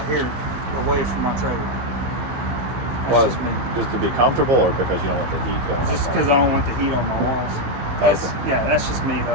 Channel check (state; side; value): late; left; 15 ms